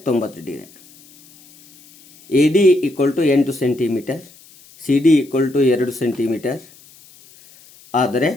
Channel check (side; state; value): left; noise; hiss, 25 dB below the sound